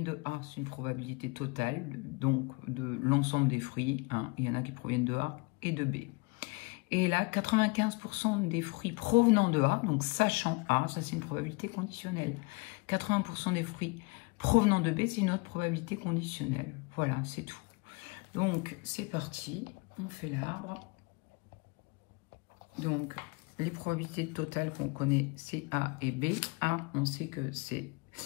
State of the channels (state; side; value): quieter; right; 28.4 dB